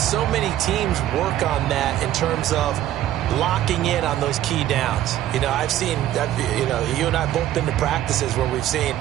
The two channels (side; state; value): left; quieter; 12.7 dB